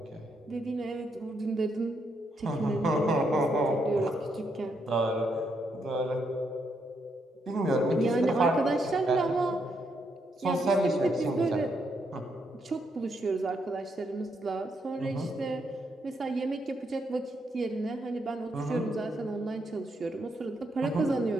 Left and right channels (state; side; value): normal; both; correlation 0.78